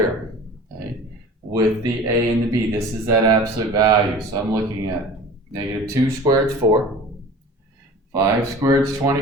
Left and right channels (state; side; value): normal; both; correlation 0.40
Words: okay? With the a and the b. This is that absolute value. So I'm looking at negative 2 squared is 4, 5 squared is